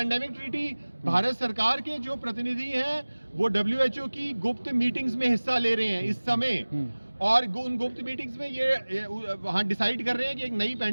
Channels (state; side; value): inverted; both; correlation -1.00